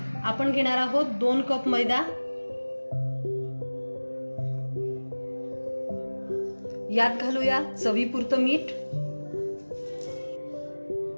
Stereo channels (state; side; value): inverted; both; correlation -1.00